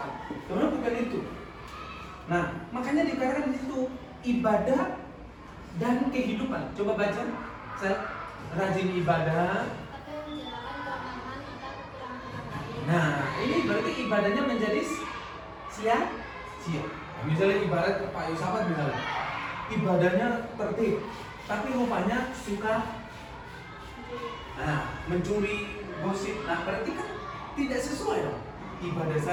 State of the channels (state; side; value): identical; both; correlation 1.00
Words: Sebenarnya bukan itu. Nah, makanya dikatakan di situ ibadah dan kehidupan. Coba baca, saya rajin ibadah. Nah, ini berarti ibadahnya menjadi sia-sia. Nah, misalnya ibarat Pak Yusafat misalnya, ibadahnya tertib, tapi rupanya suka mencuri, gosip. Nah, berarti kan tidak sesuai dong. ibadah